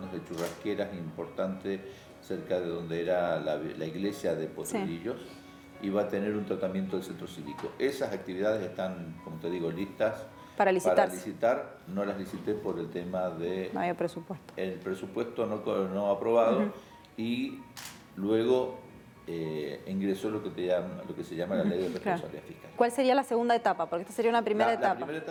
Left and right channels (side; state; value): both; identical; correlation 1.00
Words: de churrasqueras importante cerca de donde era la iglesia de Potrerillos, y va a tener un tratamiento del centro cívico. Esas actividades están, como te digo, listas para licitar. No las licité por el tema de... No había presupuesto. El presupuesto no aprobado y luego ingresó lo que se llama la ley de responsabilidad fiscal. ¿Cuál sería la segunda etapa? Porque esta sería una primera etapa. La primera